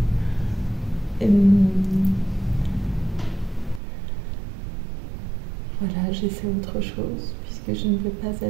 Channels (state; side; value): drops out; left; at 3.8 s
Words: Voilà, j'essaie autre chose puisque je ne veux pas